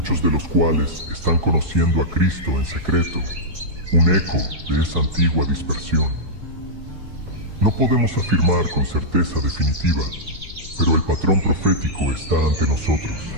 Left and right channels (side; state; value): left; late; 4.7 ms